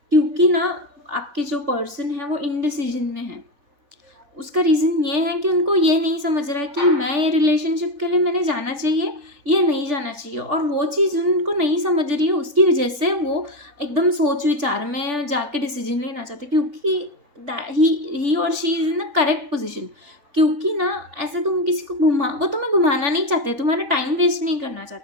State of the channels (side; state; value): left; late; 3.4 ms